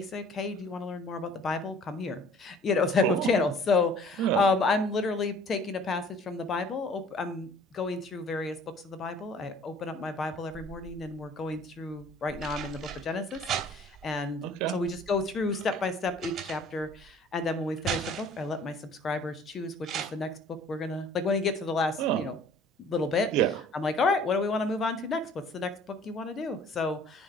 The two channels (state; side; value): normal; both; correlation 0.52